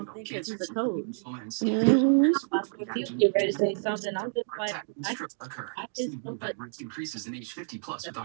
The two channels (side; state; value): left; silent; 58 dB below the other